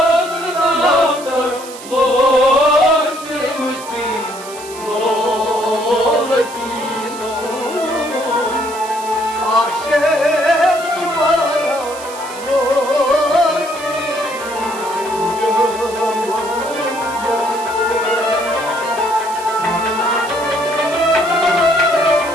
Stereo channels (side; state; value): right; noise; hiss, 15 dB below the sound